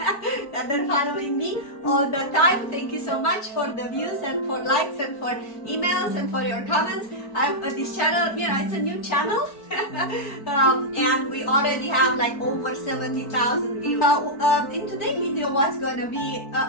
are following me all the time. Thank you so much for the views and for likes and for emails and for your comments. This channel, you know, it's a new channel and we already have like over 70,000 views. In today's video, what's going to be,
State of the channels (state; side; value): late; right; 4.5 ms